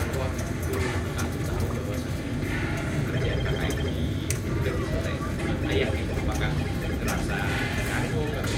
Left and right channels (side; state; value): both; identical; correlation 1.00